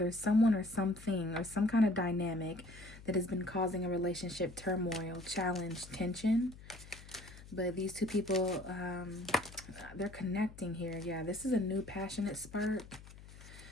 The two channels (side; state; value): left; noise; hum, 18 dB below the sound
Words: someone or something or some kind of dynamic that has been causing a relationship turmoil, challenge, tension. But these two people, they're connecting here. Yeah, this is a new passionate spark.